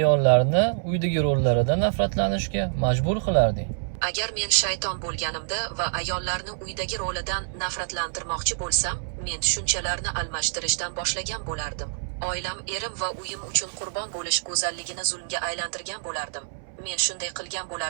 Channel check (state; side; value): silent; left; 61 dB below the other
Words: uydagi rollaridan nafratlanishga majbur qilarding? Agar men shayton bo'lganimda va ayollarni uydagi rolidan nafratlantirmoqchi bo'lsam, men tushunchalarni almashtirishdan boshlagan bo'lardim. Oilam, erim va uyim uchun qurbon bo'lish go'zalligini zulmga aylantirgan bo'lardim. Men shunday qilgan